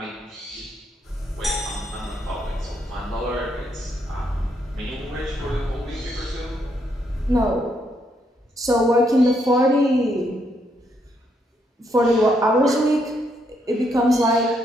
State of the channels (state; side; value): normal; both; correlation 0.75